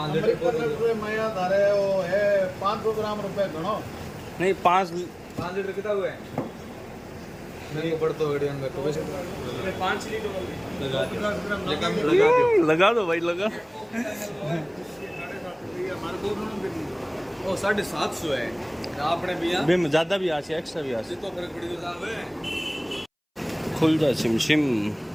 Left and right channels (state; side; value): identical; both; correlation 1.00